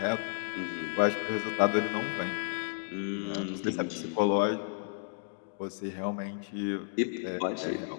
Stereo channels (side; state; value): right; silent; digital silence